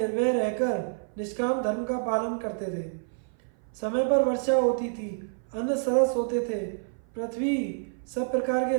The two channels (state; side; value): silent; left; 56 dB below the other